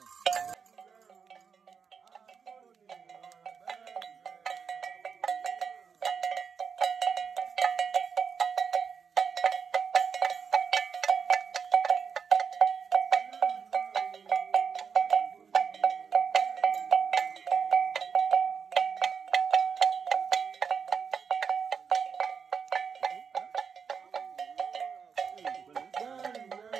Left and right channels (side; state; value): left; quieter; 6.3 dB